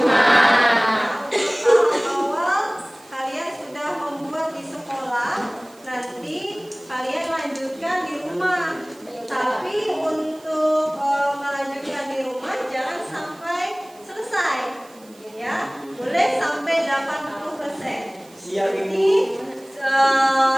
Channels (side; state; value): right; noise; hiss, 26 dB below the sound